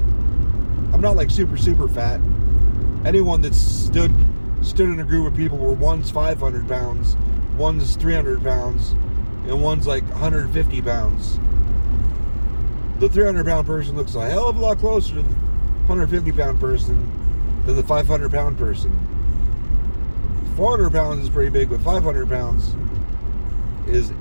I'm not like super, super fat. Anyone that's stood in a group of people where one's 500 pounds, one's 300 pounds, and one's like 150 pounds. The 300 pound person looks a hell of a lot closer to the 150 pound person than the 500 pound person. 400 pounds is pretty big, but 500 pounds is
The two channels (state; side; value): inverted; both; correlation -1.00